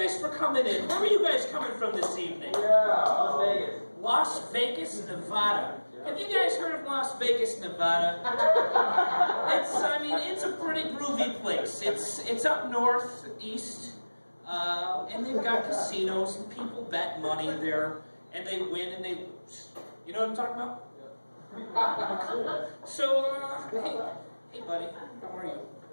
for coming in. Where are you guys coming from this evening? Las Vegas. Las Vegas, Nevada. Have you guys heard of Las Vegas, Nevada? It's a pretty groovy place. It's up northeast, and they've got casinos, and people bet money there, and they win and they lose. You know what I'm talking about? Yeah. Cool. So, hey buddy, how are you?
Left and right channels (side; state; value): both; inverted; correlation -1.00